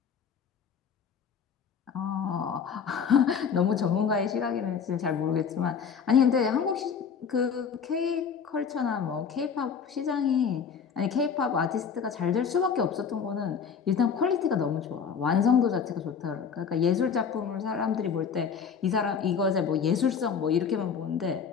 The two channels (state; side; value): quieter; right; 6.6 dB